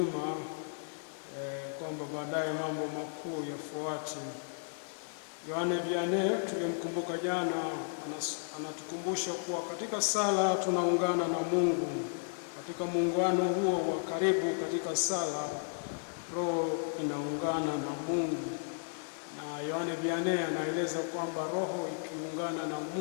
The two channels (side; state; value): right; silent; digital silence